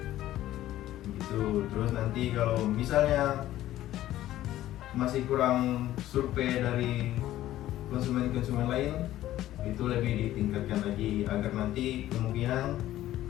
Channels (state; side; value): quieter; right; 14.0 dB